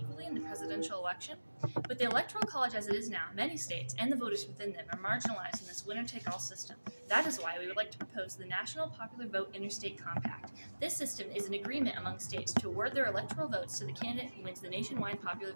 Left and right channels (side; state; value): both; inverted; correlation -1.00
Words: in the presidential election? With the Electoral College as it is now, many states and the voters within them are marginalized in this winner-take-all system. That is why we would like to propose the National Popular Vote Interstate Compact. This system is an agreement among states to award their electoral votes to the candidate who wins the nationwide popular